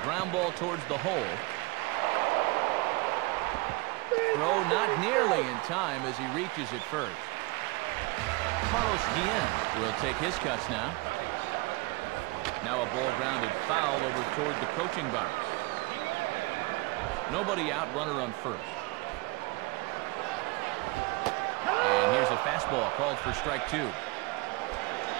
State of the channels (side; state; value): left; quieter; 24.9 dB